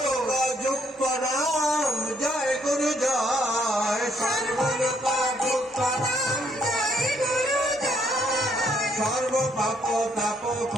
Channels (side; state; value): both; normal; correlation 0.70